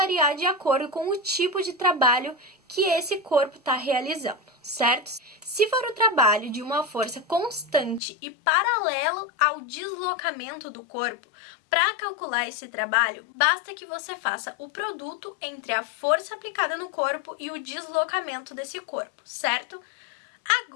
de acordo com o tipo de trabalho que esse corpo está realizando, certo? Se for o trabalho de uma força constante e paralelo ao deslocamento do corpo, para calcular esse trabalho, basta que você faça o produto entre a força aplicada no corpo e o deslocamento desse corpo, certo?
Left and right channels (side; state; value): right; drops out; at 8.0 s